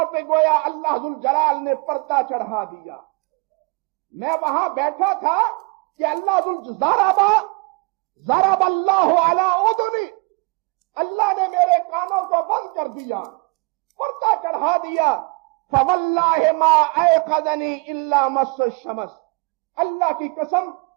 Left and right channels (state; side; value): quieter; left; 30.4 dB